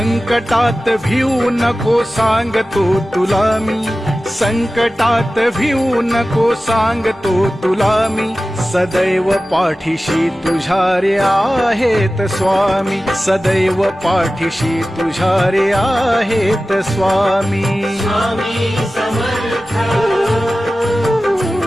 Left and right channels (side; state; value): both; normal; correlation 0.96